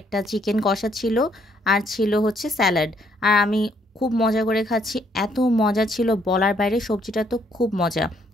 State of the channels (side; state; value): both; normal; correlation 0.69